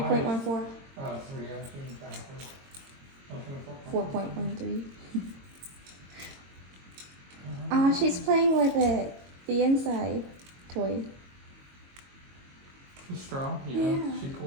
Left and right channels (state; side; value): late; left; 22 ms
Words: Oh, 3. I was doing backwards. I was doing 4.13. Aw, she's playing with it. The inside toy. The straw? Yeah. She